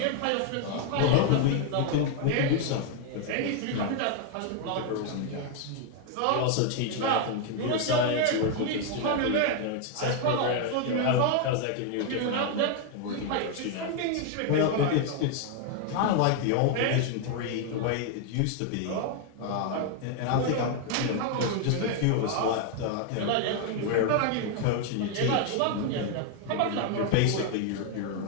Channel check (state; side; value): different; both; correlation 0.00